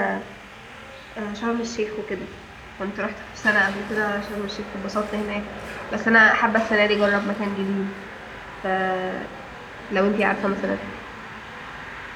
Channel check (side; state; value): both; identical; correlation 1.00